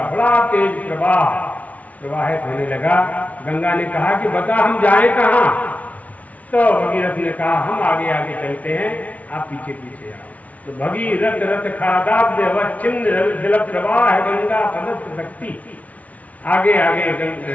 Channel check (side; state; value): right; late; 0.069 ms